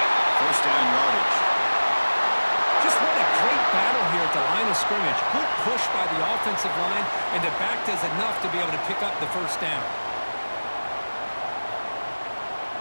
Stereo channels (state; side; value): inverted; both; correlation -1.00